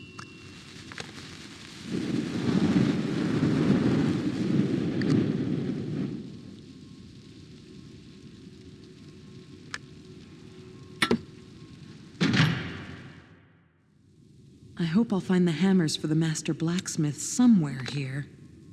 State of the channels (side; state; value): both; identical; correlation 1.00